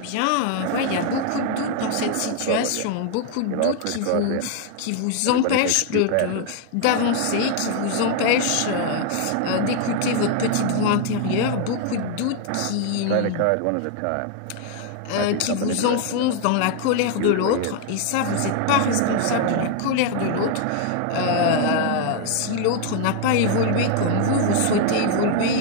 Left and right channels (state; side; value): different; both; correlation 0.00